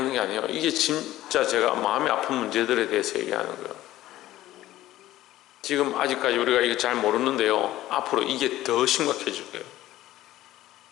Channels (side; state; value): right; quieter; 15.0 dB